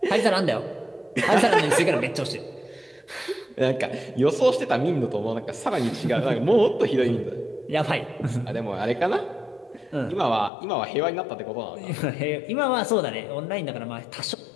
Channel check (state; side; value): drops out; right; at 10.5 s